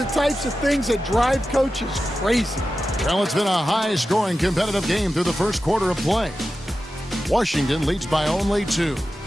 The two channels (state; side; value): normal; both; correlation 0.93